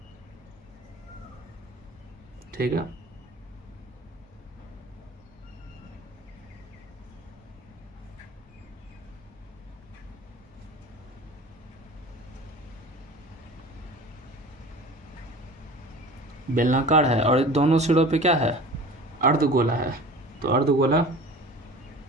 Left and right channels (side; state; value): both; normal; correlation 0.40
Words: ठीक है। बेलनाकार है और दोनों सिरों पे क्या है, अर्धगोला है। तो अर्धगोला